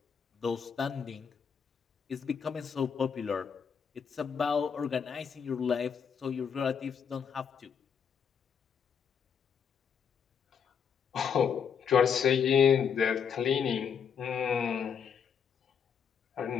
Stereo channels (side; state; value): right; quieter; 7.1 dB